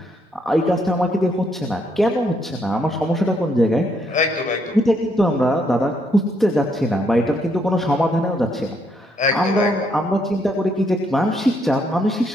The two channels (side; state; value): both; normal; correlation 0.73